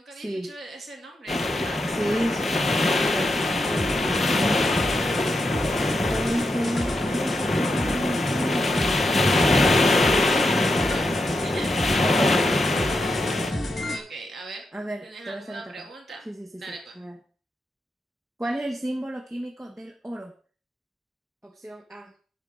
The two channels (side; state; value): both; normal; correlation 0.85